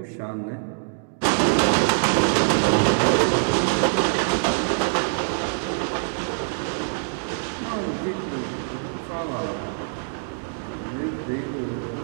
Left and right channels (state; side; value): silent; left; digital silence